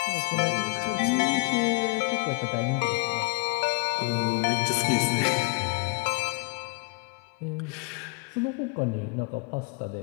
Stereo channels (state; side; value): quieter; right; 27.8 dB